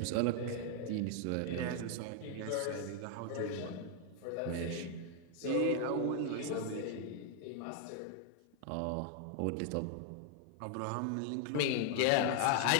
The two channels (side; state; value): both; different; correlation 0.00